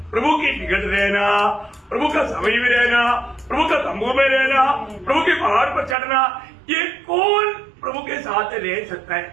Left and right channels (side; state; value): left; drops out; at 6.0 s